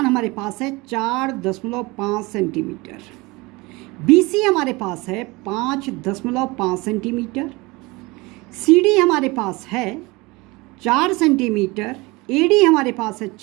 हमारे पास है 4.5 सेंटीमीटर, बी सी हमारे पास है 5.5 सेंटीमीटर, सी डी हमारे पास है 4 सेंटीमीटर, ए डी हमारे पास है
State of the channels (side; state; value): left; quieter; 23.8 dB